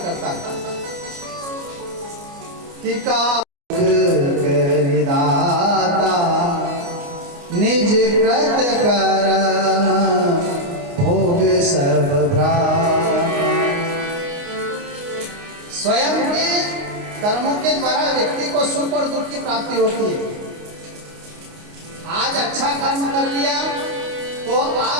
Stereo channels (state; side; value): late; left; 29 ms